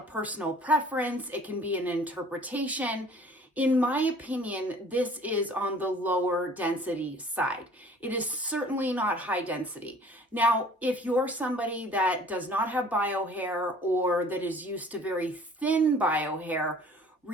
personal preference. It can be an interpretation. In my opinion, this is on the lower density side. It is certainly not high density. Now, if you're somebody that does not have bio hair or that is used to very thin bio hair,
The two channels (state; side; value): normal; both; correlation 0.50